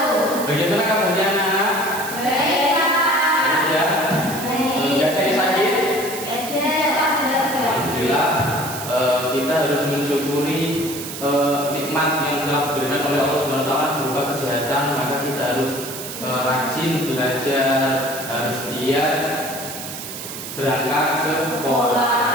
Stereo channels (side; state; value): right; noise; hiss, 9 dB below the sound